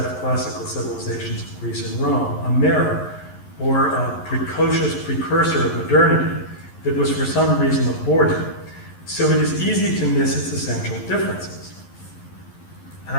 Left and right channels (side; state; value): right; late; 11 ms